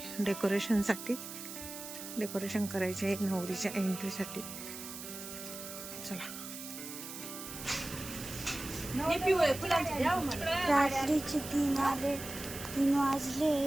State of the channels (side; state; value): right; noise; hiss, 10 dB below the sound